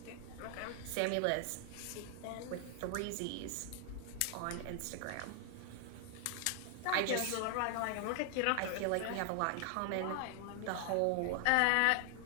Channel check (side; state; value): both; different; correlation 0.00